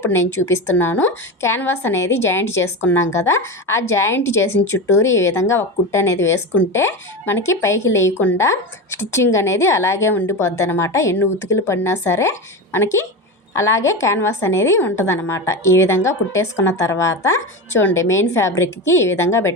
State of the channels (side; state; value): both; normal; correlation 0.21